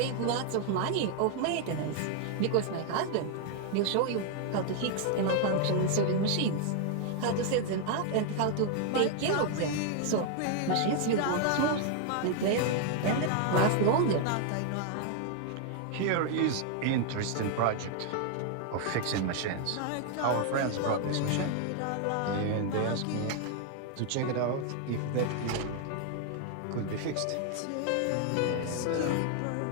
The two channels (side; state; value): both; different; correlation 0.00